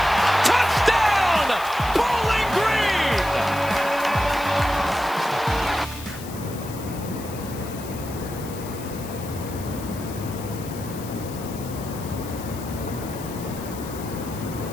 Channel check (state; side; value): noise; left; hiss, 15 dB below the sound